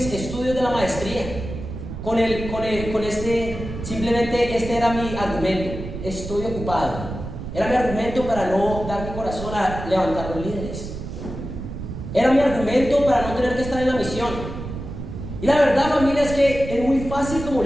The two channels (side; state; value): right; noise; rumble, 8 dB below the sound